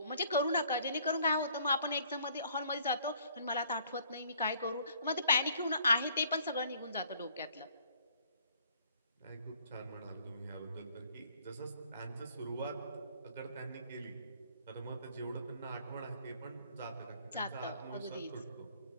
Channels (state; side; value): inverted; both; correlation -0.60